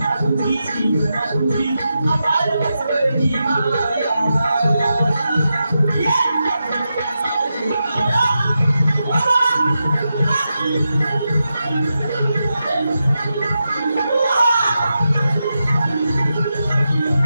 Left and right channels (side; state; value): both; inverted; correlation -0.89